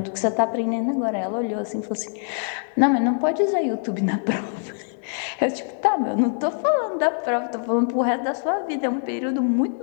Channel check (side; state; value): right; silent; 63 dB below the other